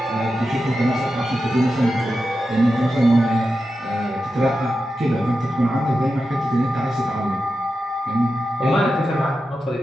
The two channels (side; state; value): both; normal; correlation 0.90